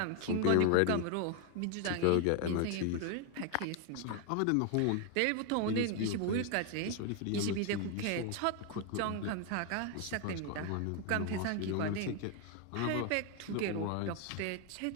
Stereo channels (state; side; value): different; both; correlation 0.01